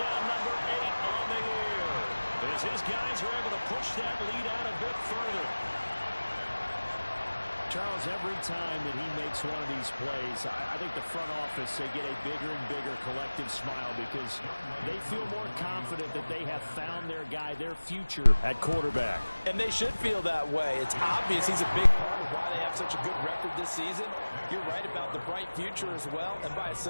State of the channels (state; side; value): inverted; both; correlation -1.00